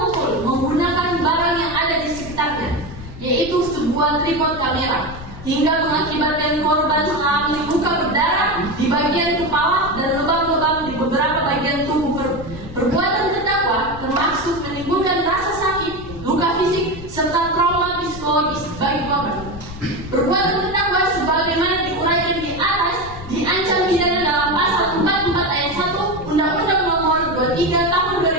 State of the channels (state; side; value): noise; left; rumble, 14 dB below the sound